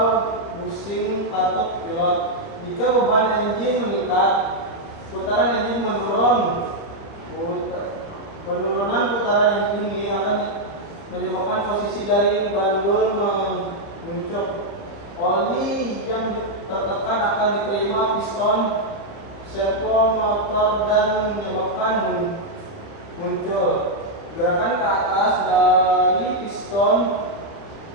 busing katup pilot. Jika beban engine meningkat, putaran engine menurun. Penurunan putaran engine ini akan menyebabkan posisi dari bandul mengucuk. Oli yang tertekan akan diterima piston servo motor dan menyebabkan muncul gerakan ke atas dari piston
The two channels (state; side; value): late; right; 30 ms